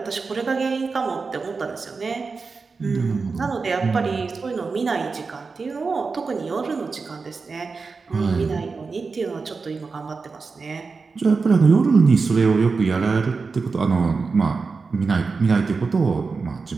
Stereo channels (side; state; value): left; quieter; 4.5 dB